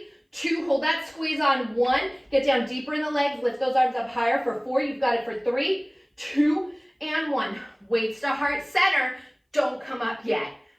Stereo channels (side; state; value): both; identical; correlation 1.00